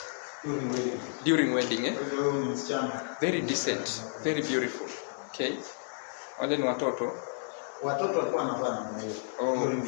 during wedding. Very decent, very beautiful. Okay. Wale ni watoto. Watoto walikuwa wanavaa namna hiyo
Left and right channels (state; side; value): silent; right; digital silence